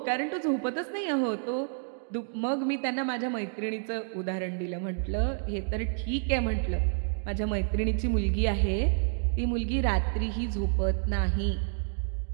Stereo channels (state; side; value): silent; left; digital silence